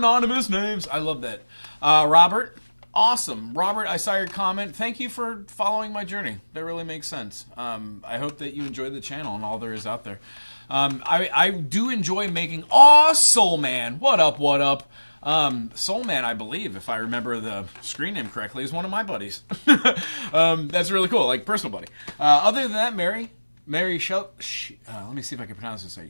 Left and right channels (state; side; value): inverted; both; correlation -1.00